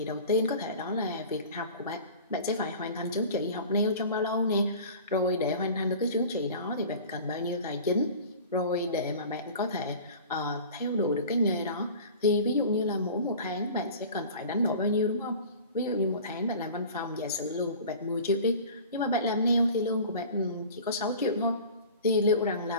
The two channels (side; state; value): both; inverted; correlation -0.40